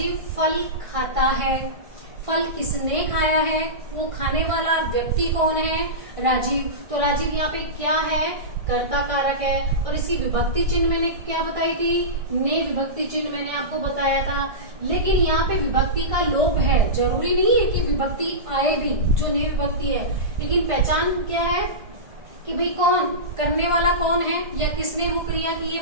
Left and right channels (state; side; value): late; left; 1.5 ms